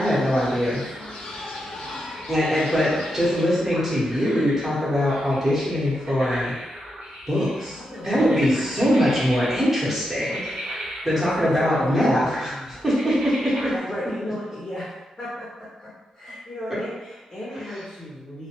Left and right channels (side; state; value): both; normal; correlation 0.85